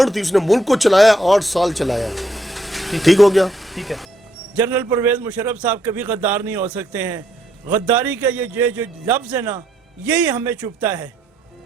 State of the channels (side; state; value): both; normal; correlation 0.73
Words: تھی. اس نے ملک کو چلایا, 8 سال چلایا. ٹھیک ہو گیا. ٹھیک ہے. جنرل پرویز مشرف صاحب کبھی غدار نہیں ہو سکتے ہیں. غداری کا یہ جو لفظ ہے نا, یہی ہمیں چبھتا ہے